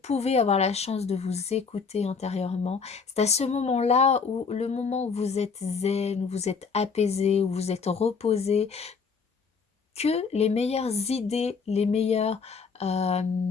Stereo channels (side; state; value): right; quieter; 5.3 dB